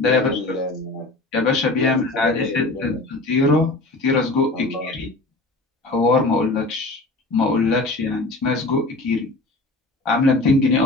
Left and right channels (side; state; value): right; quieter; 3.0 dB